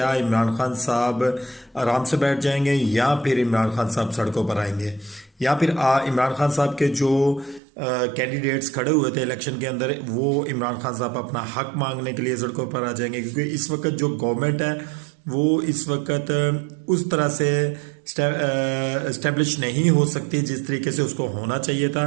इमरान खान साहब आराम से बैठ जाएंगे या फिर इमरान खान साहब सड़कों पर आएंगे, या फिर इमरान खान साहब के जो कैंडिडेट्स खड़े हुए थे इलेक्शन के अंदर वो इमरान खान साहब अपना हक मांगने के लिए सड़कों पर आ जाएंगे। क्योंकि इस वक्त जो गवर्नमेंट है वो इस वक्त उस तरह से इस्टेब्लिश नहीं हो सकती जिस तरीके से उसको होना चाहिए था।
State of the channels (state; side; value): drops out; left; at 7.6 s